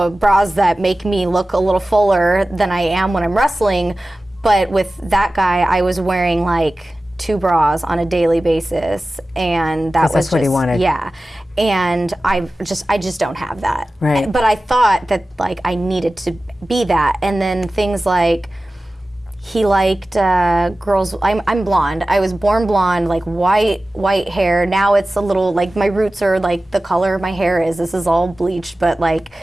bras that make me look a little fuller than I am when I'm wrestling, but with that guy, I was wearing like 2 bras on a daily basis, and that was that's what he wanted. Yeah, and I just don't have that. Right. But I thought that like I needed to be that, and then things like he liked girls. I'm blonde. I was born blonde, like white hair. Now it's a little like my roots are like the color my hair is. This is all bleached, but like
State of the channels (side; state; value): both; normal; correlation 0.96